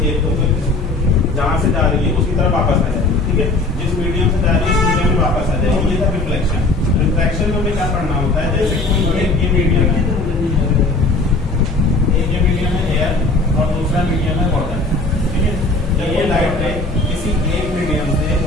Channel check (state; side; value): quieter; right; 3.1 dB